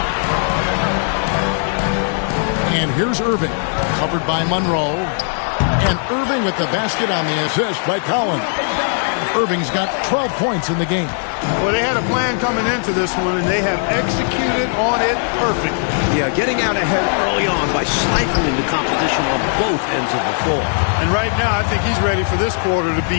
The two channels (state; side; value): silent; right; 62 dB below the other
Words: And here's Irving, covered by Monroe. And Irving with the basket on the assist by Collins. Irving's got 12 points in the game. Well, they had a plan coming into this one, and they have executed on it perfectly. Yeah, getting out ahead early on by stifling the competition on both ends of the floor. And right now, I think he's ready for this quarter to